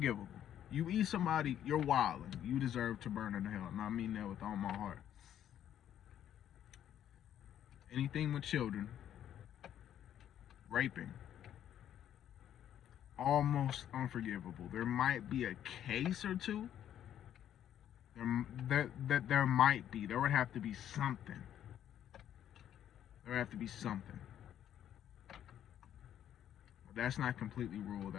You eat somebody, you're wilding. You deserve to burn in hell. And I mean that with all my heart. Anything with children, raping, almost unforgivable. There might be a case or two. There might be. There would have to be something. There would have to be something. But that's not completely ruled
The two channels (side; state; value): right; quieter; 10.6 dB